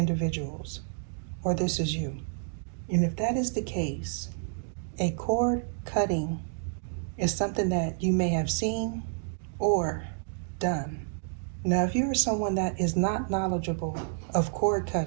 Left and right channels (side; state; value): left; silent; digital silence